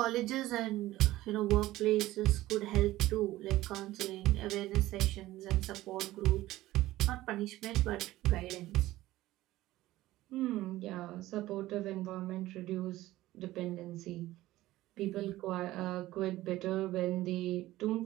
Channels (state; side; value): quieter; left; 16.4 dB